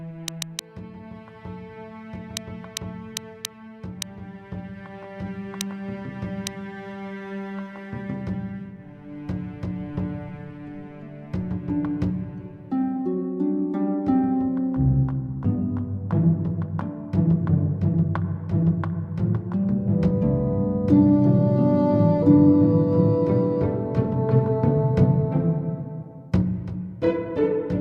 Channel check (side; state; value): both; identical; correlation 1.00